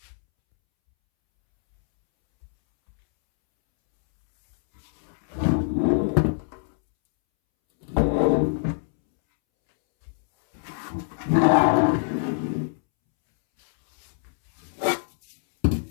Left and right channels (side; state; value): right; silent; 63 dB below the other